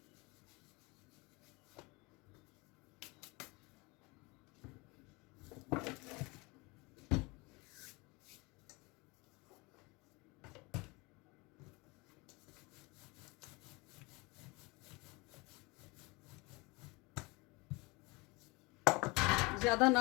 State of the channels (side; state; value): right; quieter; 26.0 dB